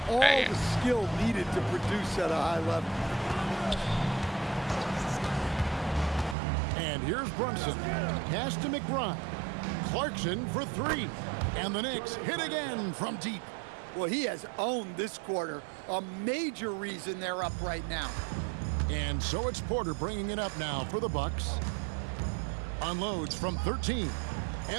all the skill needed to produce at a high level. And here's Brunson. Pass to McBride. Clarkson for 3. And the Knicks hit again from deep. Well, he has owned this quarter. A major reason they're up right now. And so it's Porter bringing it up now for the Bucks. Unloads from 13.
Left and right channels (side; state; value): left; drops out; at 6.4 s